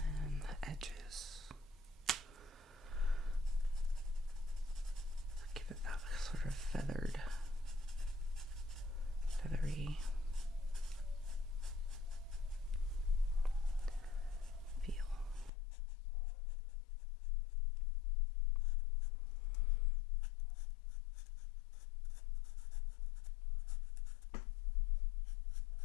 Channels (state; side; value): drops out; right; at 15.5 s